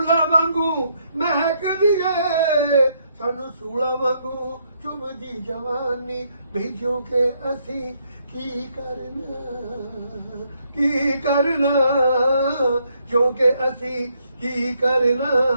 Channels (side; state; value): both; inverted; correlation -0.74